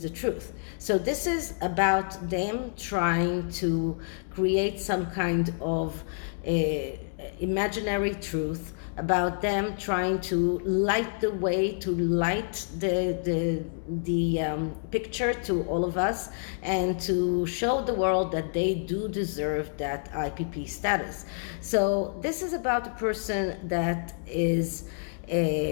the truth. So this is about them trying to create some kind of imaginary truth, about them trying to light the way, to light the picture to all of us, and to show the world that they do deserve that IPP status. So this is about a person that is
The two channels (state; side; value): silent; right; 59 dB below the other